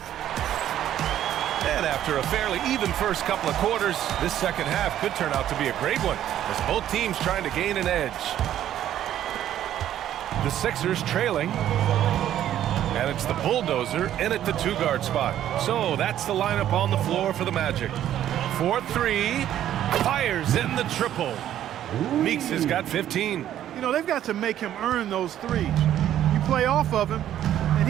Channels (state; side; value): quieter; left; 11.5 dB